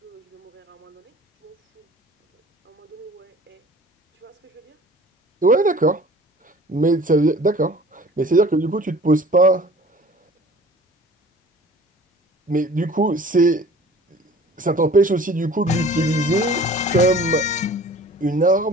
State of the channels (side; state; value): both; normal; correlation 0.47